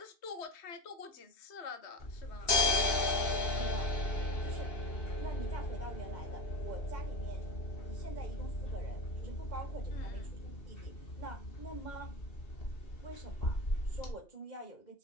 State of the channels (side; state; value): right; late; 2.7 ms